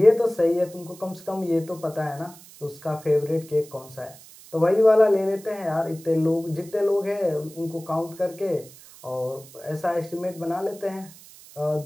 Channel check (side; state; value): right; noise; hiss, 20 dB below the sound